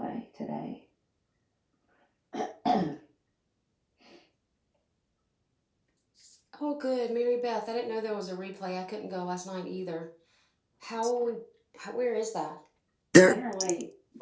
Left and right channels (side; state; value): both; identical; correlation 1.00